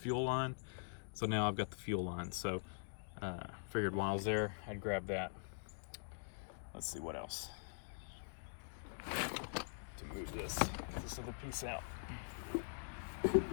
line, so now I've got the fuel line. So figured while I was there, I'd grab that. Let's see what else to move this other piece out.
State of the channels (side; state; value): right; silent; digital silence